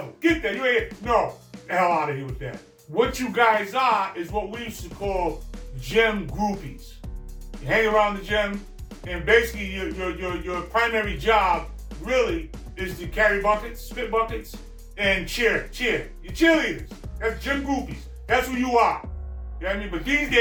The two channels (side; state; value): both; identical; correlation 1.00